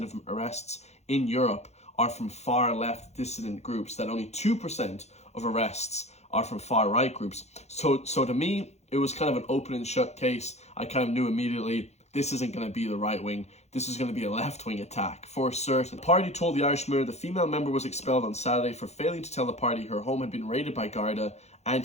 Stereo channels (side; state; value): right; late; 0.32 ms